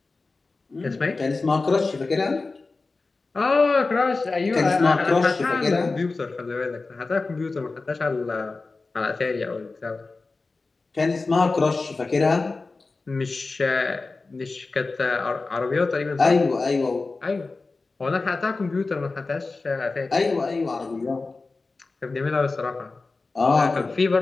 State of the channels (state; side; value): quieter; right; 3.7 dB